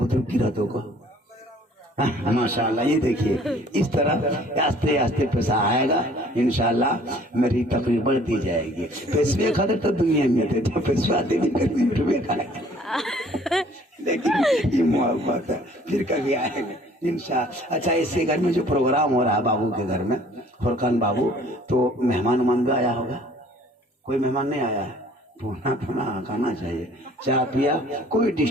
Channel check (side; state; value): both; normal; correlation 0.55